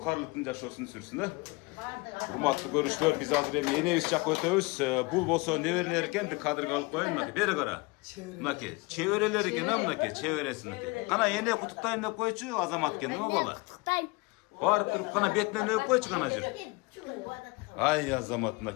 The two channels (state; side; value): quieter; right; 25.9 dB